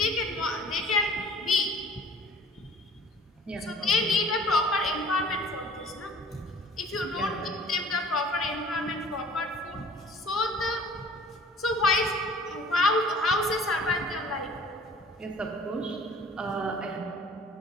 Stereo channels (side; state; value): both; normal; correlation 0.49